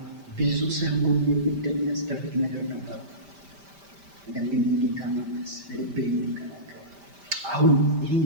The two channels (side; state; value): left; late; 5.1 ms